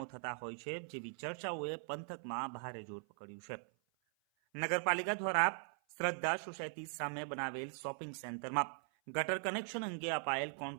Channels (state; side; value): silent; left; 51 dB below the other